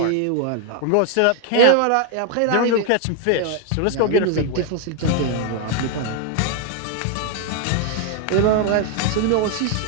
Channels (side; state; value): both; different; correlation 0.00